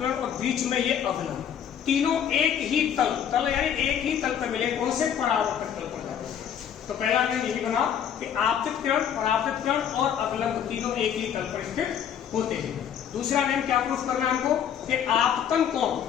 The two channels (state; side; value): quieter; right; 8.9 dB